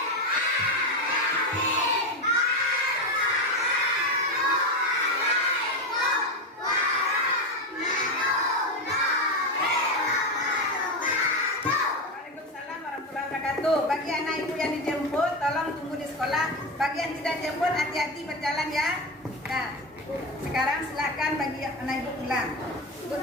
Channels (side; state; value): both; normal; correlation 0.16